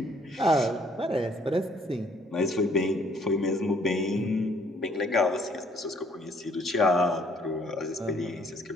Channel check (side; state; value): both; normal; correlation 0.63